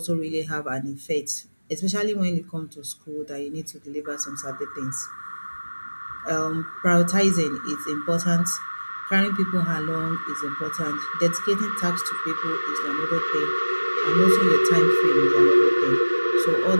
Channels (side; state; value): both; inverted; correlation -1.00